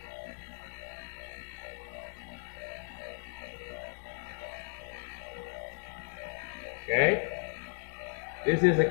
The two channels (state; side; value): silent; right; 54 dB below the other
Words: Okay? This is a